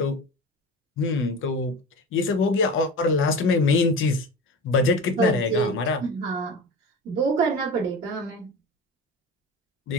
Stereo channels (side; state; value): both; normal; correlation 0.31